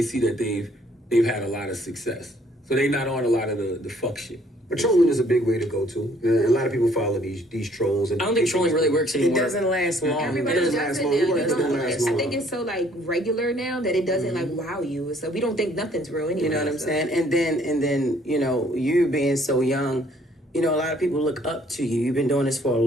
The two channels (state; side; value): normal; both; correlation 0.62